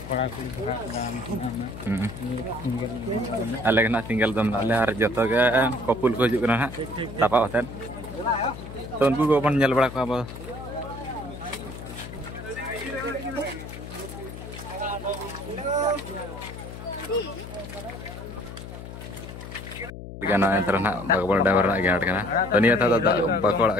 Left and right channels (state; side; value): noise; left; hum, 11 dB below the sound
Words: कोड़ा कुड़ी भरा दाम अले ना सिंगल दम अले और जतो के कपुल को हिजुग कना तापा होतन तो उनको को बन नेल बड़ा को अब गाना तरना बागबल ड्राइवर ना गेट कना तो निया था बाकोड़ा